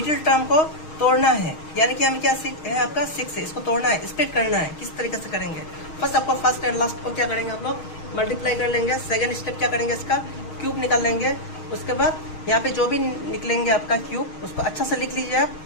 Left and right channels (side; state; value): right; late; 6.4 ms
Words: टर्म को तोड़ना है, यानी कि हमें क्या है आपका 6 है, इसको तोड़ना है, स्प्लिट करना है। किस तरीके से करेंगे, फर्स्ट आपको फर्स्ट एंड लास्ट को क्या करेंगे आप लोग मल्टीप्लाई कर लेंगे। सेकंड स्टेप क्या करेंगे, इसका क्यूब निकाल लेंगे। उसके बाद यहाँ पे जो भी निकलेंगे आपका क्यूब, उसको अच्छा से लिख लीजिए आप।